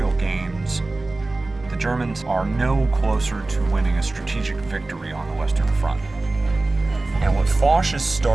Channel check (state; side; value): quieter; left; 3.1 dB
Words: gains, the Germans are no closer to winning a strategic victory on the Western Front. And what Foch is